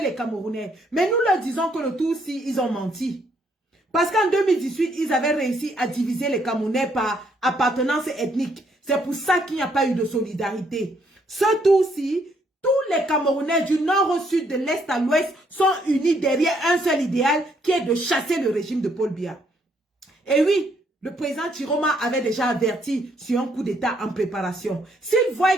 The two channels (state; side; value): normal; both; correlation 0.70